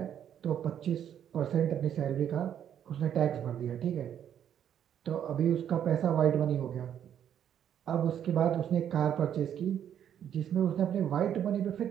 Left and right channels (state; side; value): quieter; left; 9.6 dB